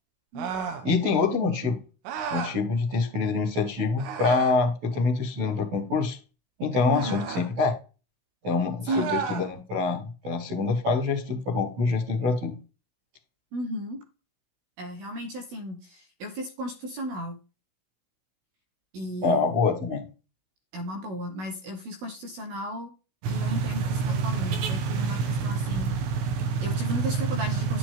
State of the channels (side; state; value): left; late; 16 ms